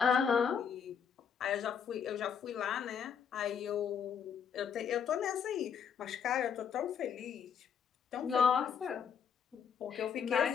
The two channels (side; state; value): right; quieter; 7.4 dB